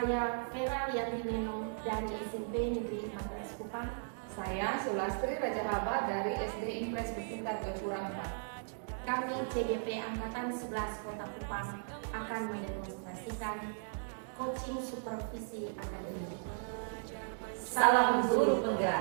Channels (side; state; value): left; silent; digital silence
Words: Vera Liatineno dari SMP Negeri 14 Kupang. Saya Sulastri Rajahaba dari SD Impres bertingkat Gapura 4. Kami CGP Angkatan 11 Kota Kupang akan mendemonstrasikan coaching supervisi akademik. Salam guru